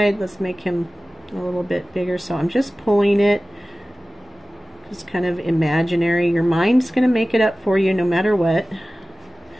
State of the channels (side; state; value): both; normal; correlation 0.97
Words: Let's make him a little bit bigger. So I'm just pulling it. Just kind of imaginary. Your mind's going to make it up for you no matter what.